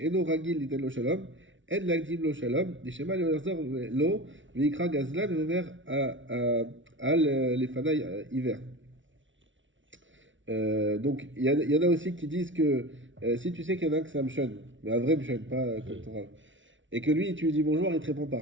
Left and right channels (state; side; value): late; left; 0.56 ms